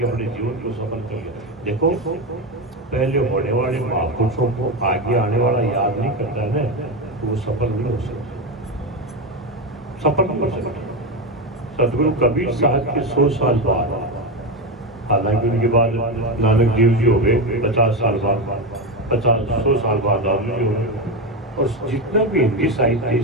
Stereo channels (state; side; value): normal; both; correlation 0.14